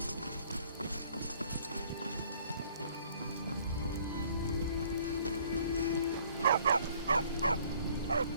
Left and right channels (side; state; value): both; inverted; correlation -0.58